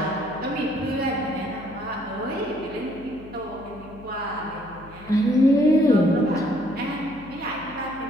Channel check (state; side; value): noise; left; hum, 20 dB below the sound